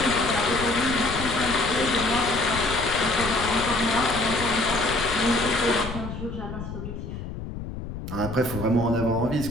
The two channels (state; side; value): noise; left; rumble, 8 dB below the sound